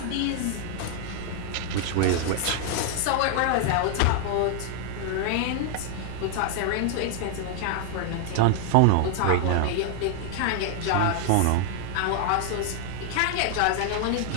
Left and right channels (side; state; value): both; different; correlation 0.00